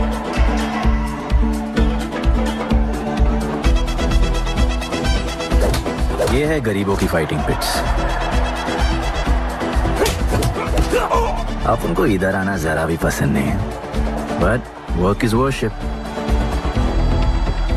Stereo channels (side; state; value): both; identical; correlation 1.00